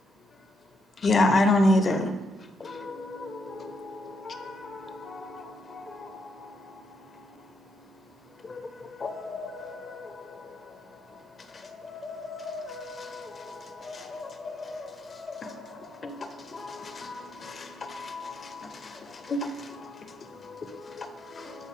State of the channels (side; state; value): both; normal; correlation 0.78